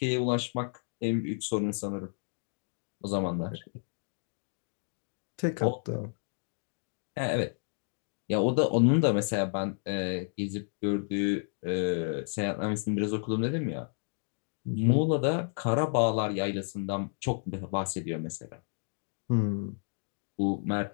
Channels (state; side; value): silent; right; 57 dB below the other